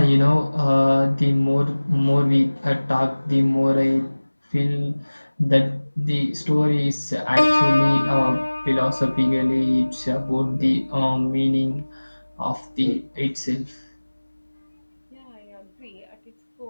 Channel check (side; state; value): both; inverted; correlation -1.00